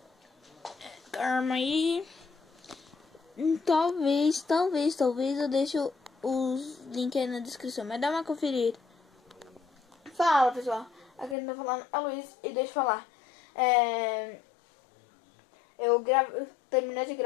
Calma aí. Talvez eu deixe os links aí na descrição, mas dá uma conferida. Fala, pessoal. Aqui eu tô falando a Luiz e deixa eu falar. Eu terminei de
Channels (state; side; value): drops out; right; at 11.4 s